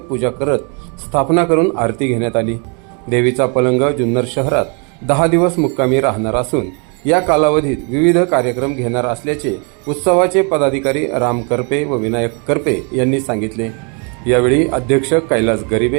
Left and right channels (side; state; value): left; quieter; 36.1 dB